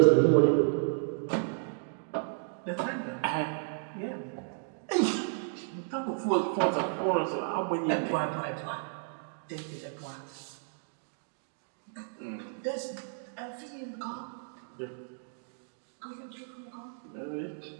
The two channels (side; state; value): left; silent; digital silence